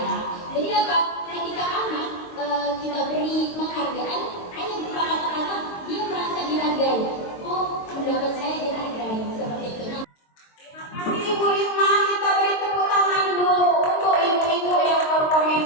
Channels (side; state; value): right; late; 22 ms